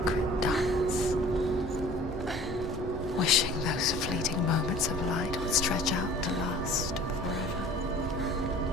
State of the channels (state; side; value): normal; both; correlation 0.46